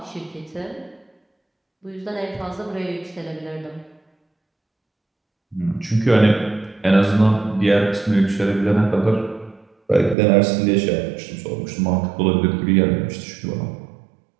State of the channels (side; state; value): left; drops out; at 10.2 s